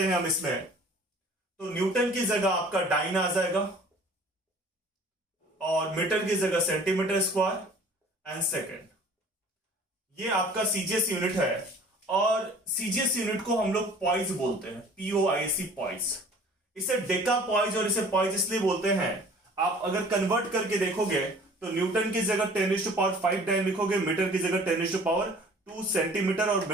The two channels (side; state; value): both; normal; correlation 0.49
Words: हैं हम इसमें, तो न्यूटन की जगह आपका डाइन आ जाएगा, और मीटर की जगह सेंटीमीटर स्क्वायर एंड सेकेंड. ये आपका CGS यूनिट है, और CGS यूनिट को हम लोग पॉइज बोलते हैं, POIC पॉइज. इसे डेकापॉइज और इसे पॉइज इसलिए बोलते हैं, आप अगर कन्वर्ट करके देखोगे तो न्यूटन की जगह 10⁵ डाइन लिखोगे, मीटर की जगह 10⁻² सेंटीमीटर, और